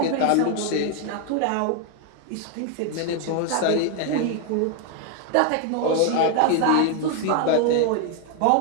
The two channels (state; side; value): different; both; correlation 0.01